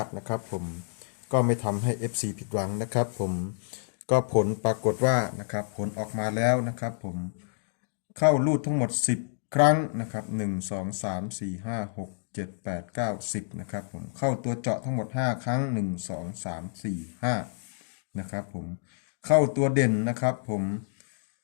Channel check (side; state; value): right; silent; digital silence